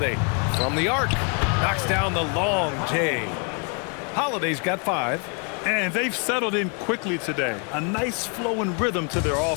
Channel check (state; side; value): quieter; right; 38.0 dB